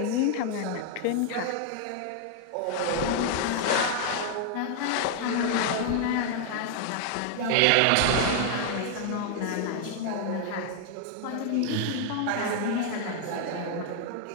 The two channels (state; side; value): different; both; correlation 0.00